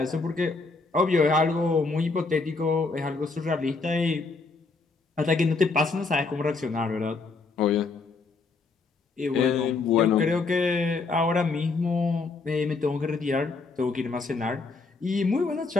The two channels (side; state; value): right; quieter; 4.0 dB